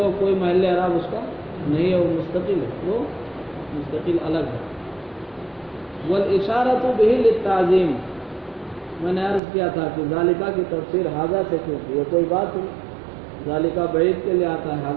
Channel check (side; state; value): left; drops out; at 9.4 s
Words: کوئی محل اعراب اس کا نہیں ہے، وہ مستقل ہے، وہ مستقل الگ ہے۔ والاشارۃ بہ للتعظیم، میں نے عرض کیا تھا کہ ذالکہ کی تفسیر ھذا سے کیوں کی، یہ کوئی بات ہوئی، ذالکہ بعید کے لیے آتا ہے،